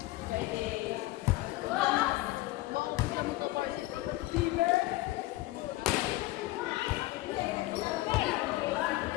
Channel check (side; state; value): right; quieter; 18.7 dB